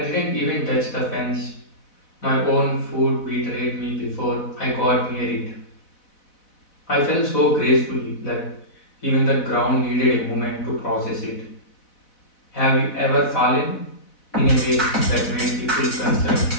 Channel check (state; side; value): late; right; 4.0 ms